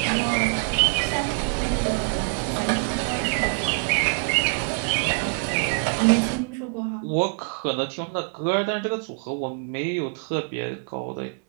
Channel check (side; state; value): left; quieter; 38.0 dB